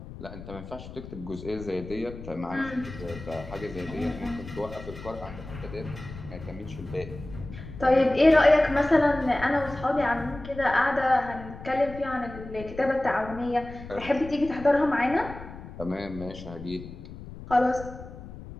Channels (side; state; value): left; noise; rumble, 13 dB below the sound